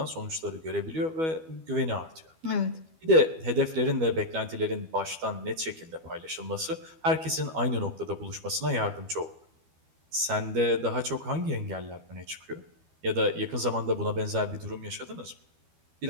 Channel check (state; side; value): late; left; 12 ms